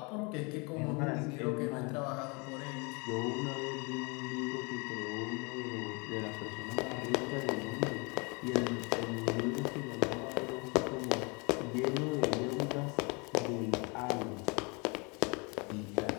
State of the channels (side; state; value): right; quieter; 30.4 dB